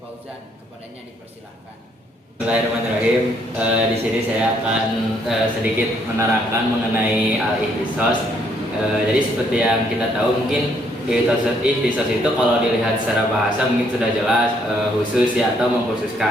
Fauzan. Kepadanya dipersilahkan. Bismillahirrahmanirrahim. Di sini saya akan sedikit menerangkan mengenai al-ihtisos. Jadi seperti yang kita tahu, mungkin ihtisos itu kalau dilihat secara bahasa mungkin sudah jelas khusus ya atau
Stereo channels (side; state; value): both; normal; correlation 0.69